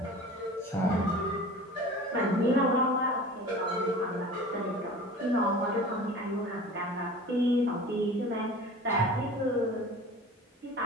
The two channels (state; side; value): normal; both; correlation 0.40